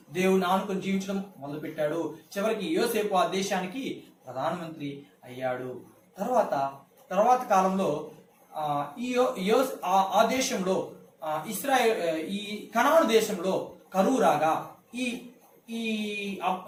దేవుని ఆనుకొని జీవించడం మొదలుపెట్టాడు. చివరికి యోసేపు ఆ దేశానికి ప్రధానమంత్రి అయ్యాడు. తర్వాత కాలంలో ఆ దేశంలో ఇస్రాయేల్ ఈ కనాను దేశంలో కరువు రాగా ఈ ఈ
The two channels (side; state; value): both; identical; correlation 1.00